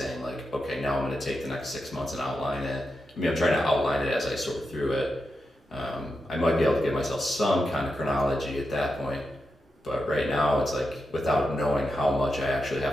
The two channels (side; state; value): both; normal; correlation 0.88